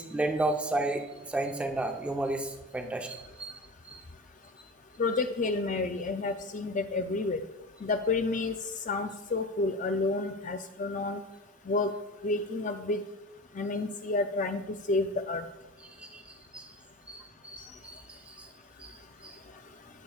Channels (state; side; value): normal; both; correlation 0.34